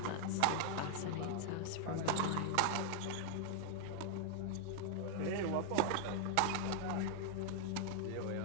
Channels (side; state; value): both; different; correlation 0.00